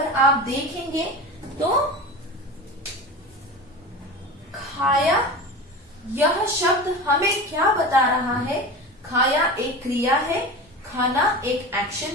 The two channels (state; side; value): normal; both; correlation 0.30